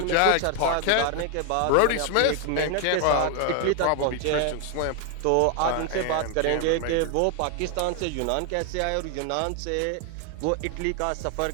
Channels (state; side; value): different; both; correlation 0.00